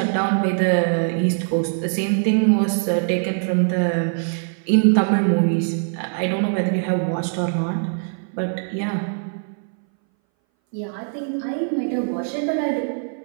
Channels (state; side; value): silent; left; 61 dB below the other